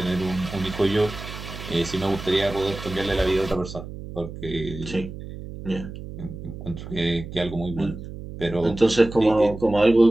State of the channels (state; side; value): noise; right; hum, 11 dB below the sound